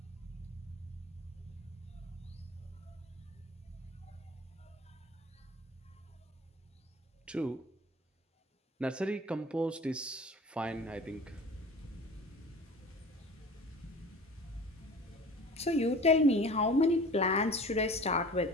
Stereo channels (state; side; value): normal; both; correlation 0.41